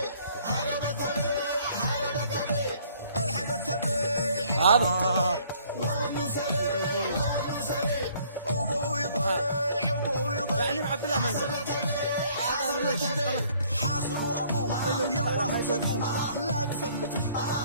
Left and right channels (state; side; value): inverted; both; correlation -0.60